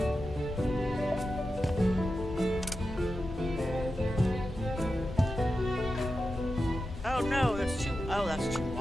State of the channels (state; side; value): normal; both; correlation 0.91